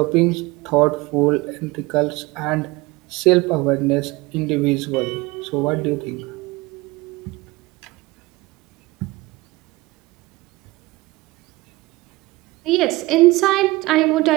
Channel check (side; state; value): left; quieter; 21.3 dB